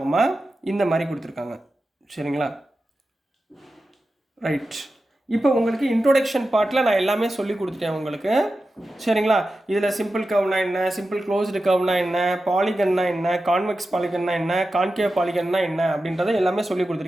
இந்த மாதிரி கொடுத்துருக்காங்க, சரிங்களா? ரைட். இப்போ உங்களுக்கு இன்ட்ரோடக்ஷன் பார்ட்டில் நான் எல்லாமே சொல்லி கொடுத்துட்டேன் உங்களுக்கு, சரிங்களா? இதில் சிம்பிள் கர்வ்னா என்ன, சிம்பிள் க்ளோஸ்டு கர்வ்னா என்ன, பாலிகன்னா என்ன, கான்வெக்ஸ் பாலிகன்னா என்ன, கான்கேவ் பாலிகன்னா என்ன அப்படின்றத எல்லாமே சொல்லி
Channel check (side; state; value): both; normal; correlation 0.92